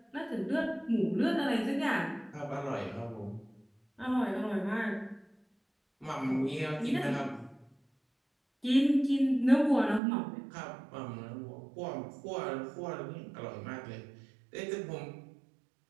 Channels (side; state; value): left; drops out; at 10.0 s